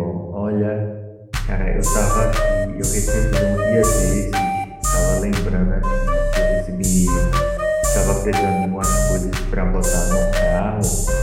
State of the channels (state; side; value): identical; both; correlation 1.00